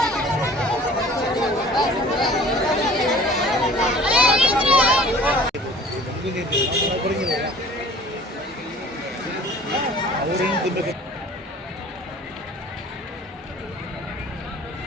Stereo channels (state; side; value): normal; both; correlation 0.48